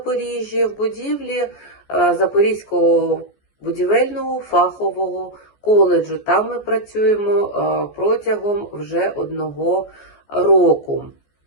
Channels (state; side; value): late; right; 14 ms